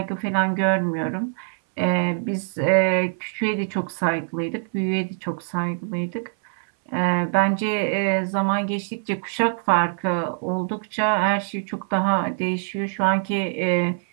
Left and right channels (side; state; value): left; silent; 63 dB below the other